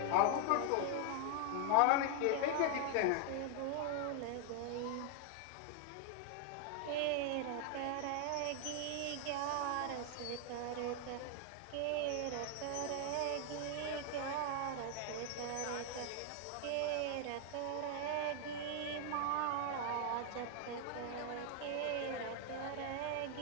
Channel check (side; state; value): both; different; correlation 0.00